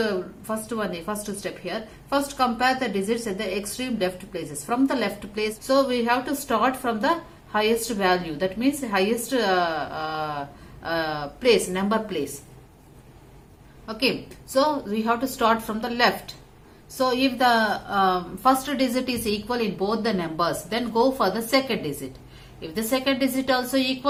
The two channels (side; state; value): both; identical; correlation 1.00